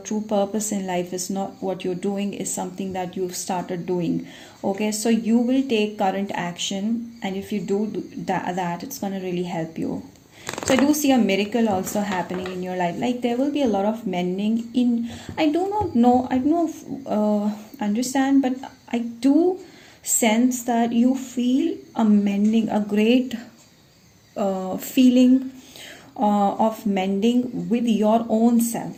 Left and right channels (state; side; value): identical; both; correlation 1.00